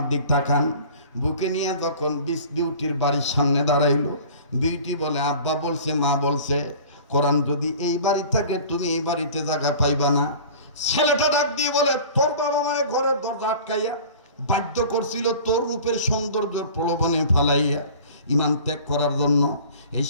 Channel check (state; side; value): inverted; both; correlation -0.43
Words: দিক তাকান, বুকে নিয়ে যখন বিউটির বাড়ির সামনে দাঁড়াইলো, বিউটি বলে, আব্বা বলছে, মা বলছে, কোরআন যদি এই বাড়ি থাকে তুমি এই বাড়িতে জায়গা পাইবা না। ছেলেটা ডাক দিয়ে বলে, তোর বাবা মায়ের ঘরের দরজা আটকাইয়া বাধ্য করছিল তোর রূপের সৌন্দর্যের প্রলোভনে ফালাইয়া ঈমান ত্যাগ করার জন্য। এই